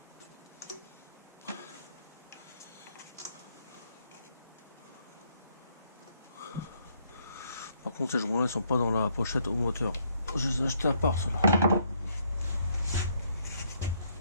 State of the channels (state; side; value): inverted; both; correlation -0.70